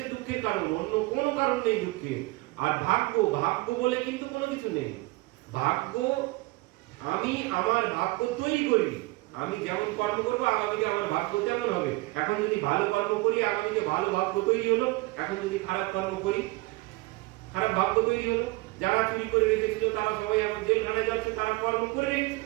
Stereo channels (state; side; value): quieter; left; 22.1 dB